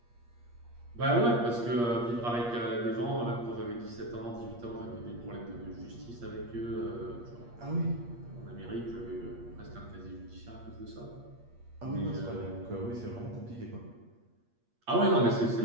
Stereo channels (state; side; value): late; left; 8.5 ms